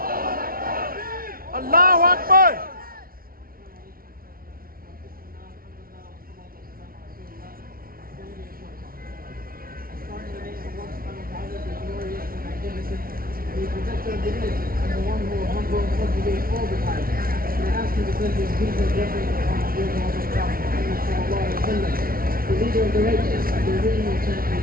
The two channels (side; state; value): left; late; 0.43 ms